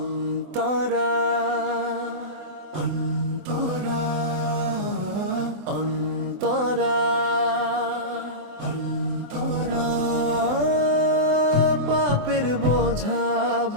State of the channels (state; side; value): late; left; 24 ms